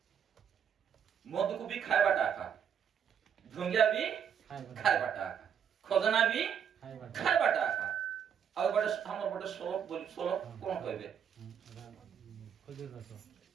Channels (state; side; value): quieter; left; 8.1 dB